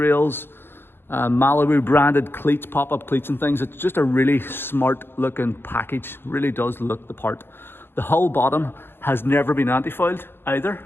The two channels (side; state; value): right; late; 0.10 ms